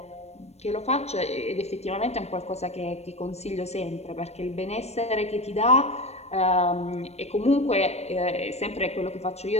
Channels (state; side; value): late; right; 0.31 ms